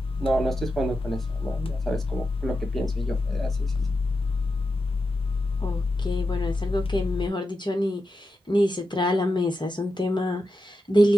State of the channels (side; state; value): both; normal; correlation 0.89